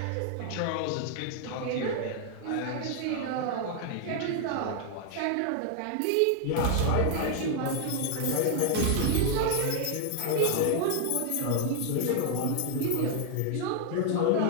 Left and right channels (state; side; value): different; both; correlation 0.00